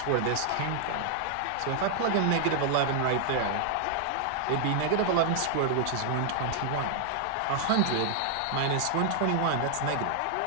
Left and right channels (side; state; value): both; different; correlation -0.01